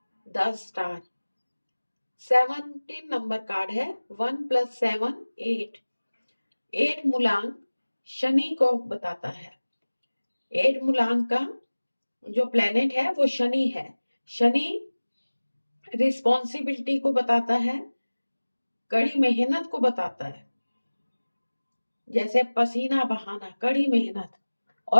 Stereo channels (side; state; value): both; inverted; correlation -1.00